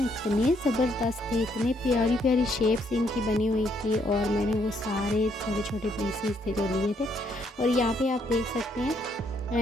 इतने ज़बरदस्त थे, इतने प्यारी प्यारी शेप्स इनकी बनी हुई थी। और मैंने वो सारे छोटे छोटे पीसीस थे जो लिए थे। और यहाँ पे आप देख सकते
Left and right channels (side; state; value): both; normal; correlation 0.71